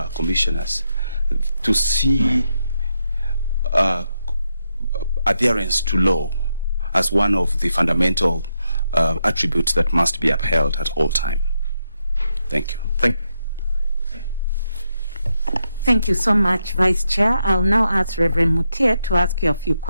commissioners to see adherence to law as one of the fundamental attributes that must be upheld at all time. Thank you. Thank you so much, Vice Chair. I'll now ask Reverend Mutia to ask you a few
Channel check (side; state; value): both; inverted; correlation -0.83